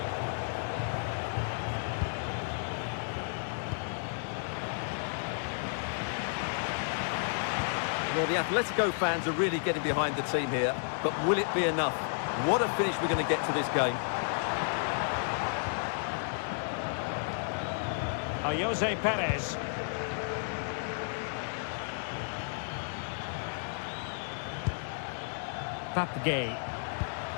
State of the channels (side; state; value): right; silent; digital silence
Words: Well, the Atletico fans are really getting behind the team here, but will it be enough? What a finish we're going to get to this game. Jose Perez. Papgay.